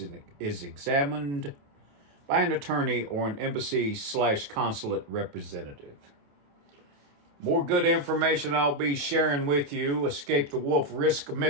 examined by an attorney or an embassy/consulate representative. More good information I'll be sharing with you. Escape the Wolf, Risk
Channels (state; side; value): late; left; 28 ms